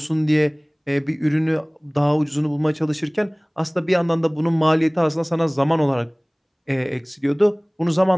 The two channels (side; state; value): both; identical; correlation 1.00